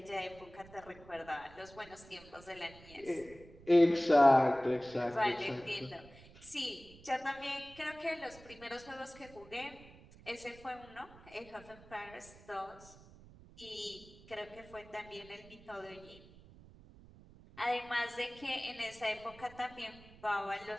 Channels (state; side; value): noise; right; rumble, 21 dB below the sound